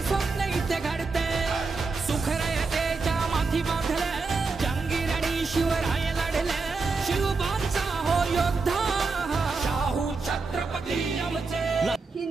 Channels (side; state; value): left; quieter; 4.2 dB